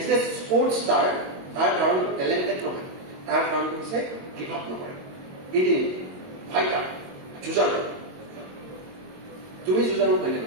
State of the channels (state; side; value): late; left; 22 ms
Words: a sports star. তাৰ কাৰণটো টেলেণ্টেড নহয়, তাৰ কাৰণটো হৈছে গিভ আপ নকৰে, এদিন ফাইটাৰ, যুঁজাৰু। তুমি যুঁজাৰু হয়নে